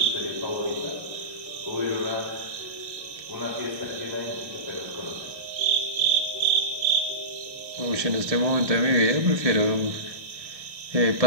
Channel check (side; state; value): left; late; 1.2 ms